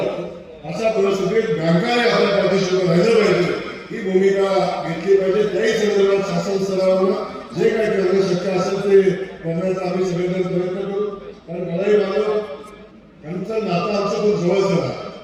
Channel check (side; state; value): both; identical; correlation 1.00